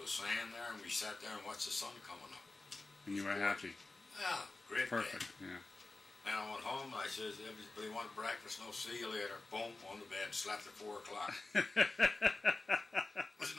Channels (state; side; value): quieter; right; 3.3 dB